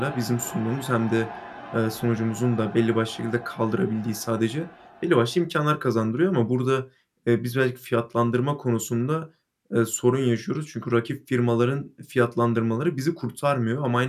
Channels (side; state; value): both; identical; correlation 1.00